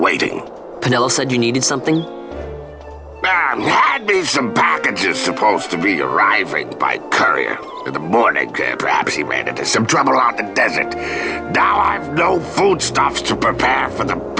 Pinello said you needed something? Had me some packages supposed to be arriving by courier. In the morning, perhaps he ran into some trouble out in the desert. Now I've no foodstuffs to prepare for the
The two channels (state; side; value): identical; both; correlation 1.00